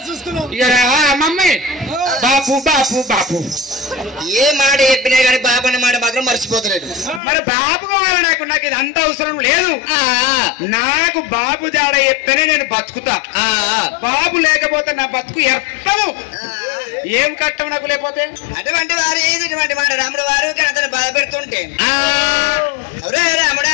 మమ్మీ బాపు బాపు బాపు ఏ మాట చెప్పినా కానీ బాబు అనే మాట మాత్రం మర్చిపోతలేదు. మరి బాబు కావాలి నాకు ఇది అంత అవసరం లేదు. నాకు బాబు జాడ చెప్తేనే నేను బతుకుతా. బాబు లేకపోతే నా బతుకు ఎత్తము. ఏం కట్టం నాకు లేకపోతే? అటువంటి వారు ఇటువంటి మాట రాముడు వారు కనతను బాధ పెడుతుంటే రాముడా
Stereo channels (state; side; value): drops out; right; at 7.2 s